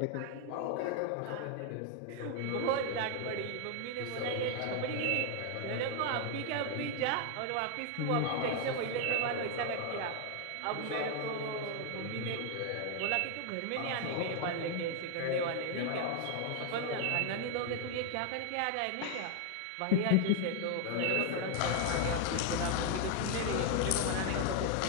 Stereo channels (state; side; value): different; both; correlation 0.00